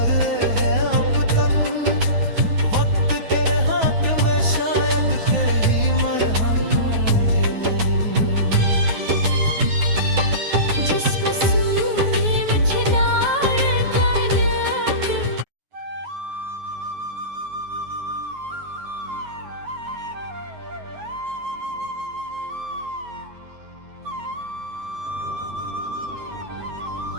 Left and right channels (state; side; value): late; left; 9.5 ms